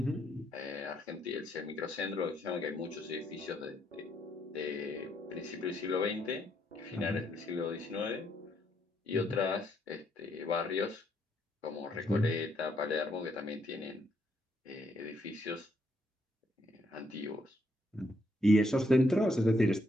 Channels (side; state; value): both; normal; correlation 0.74